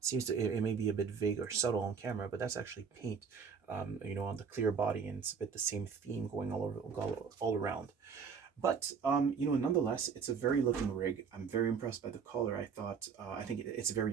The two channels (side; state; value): left; quieter; 6.1 dB